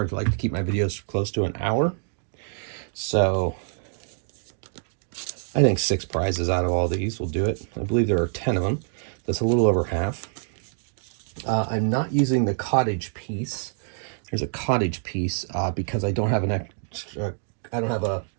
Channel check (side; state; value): left; silent; digital silence